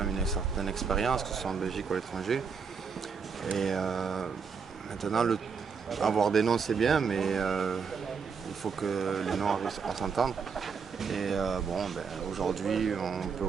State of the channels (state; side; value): quieter; left; 5.8 dB